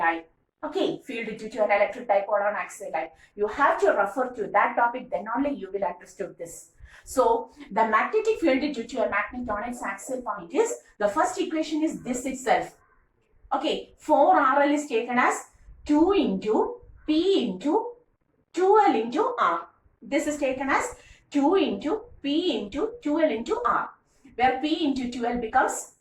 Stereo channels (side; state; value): both; identical; correlation 1.00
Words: Okay, field due to an electric dipole on axial line. You have to refer to that topic, then only you will understand this. So, the magnetic field due to a magnet on its axial point is, the first equation is this itself. Okay, 4RL is taken as 2 into P into 2L into R. This is taken as 2 into P into 2L into R, where P into 2L